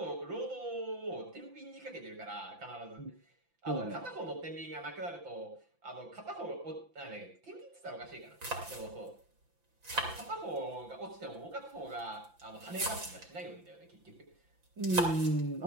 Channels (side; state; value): left; late; 5.9 ms